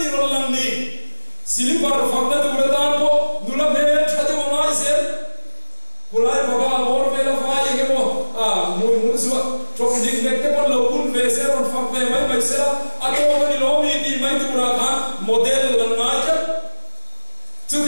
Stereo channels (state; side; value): inverted; both; correlation -1.00